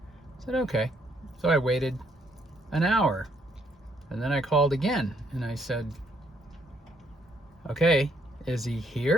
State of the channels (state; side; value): normal; both; correlation 0.70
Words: said, okay. So I waited an hour, and then I called again and I said, okay, is he